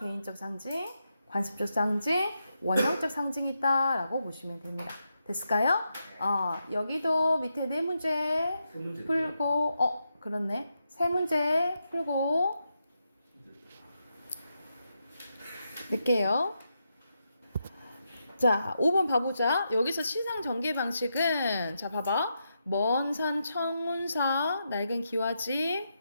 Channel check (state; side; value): inverted; both; correlation -0.84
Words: 상징, 관습적 상징, 원형적 상징이 있다라고 보시면 됩니다. 됐을까요? 여기도 밑에 네 문제 풀고, 그렇네. 세 문제 풀고 낼게요. 자, 5번 봐보자. 여기서 시상 전개 방식은, 자, 봐봐. 먼 산 청운사, 낡은 기와집,